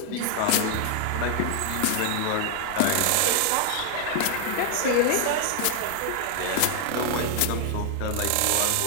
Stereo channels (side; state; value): both; different; correlation 0.00